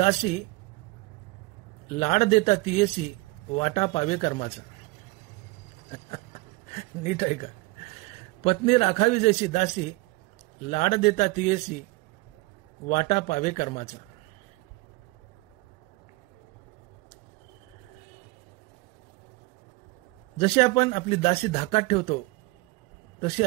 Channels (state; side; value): quieter; left; 22.5 dB